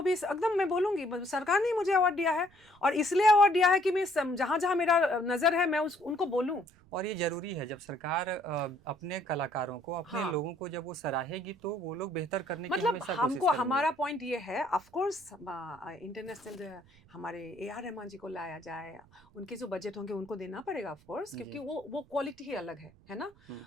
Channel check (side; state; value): right; noise; rumble, 28 dB below the sound